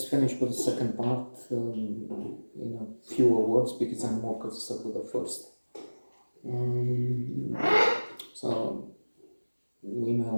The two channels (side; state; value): both; inverted; correlation -1.00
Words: finish with the second part in a fewer words because I'm more concerned with the first. So we may